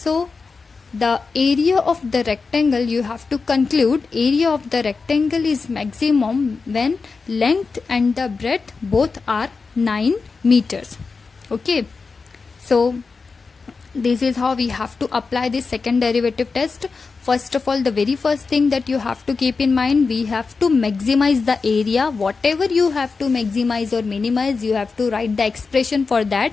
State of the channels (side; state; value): right; quieter; 4.6 dB